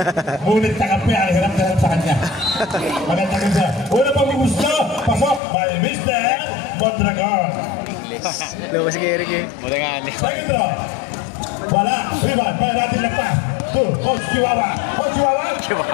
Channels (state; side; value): drops out; right; at 5.4 s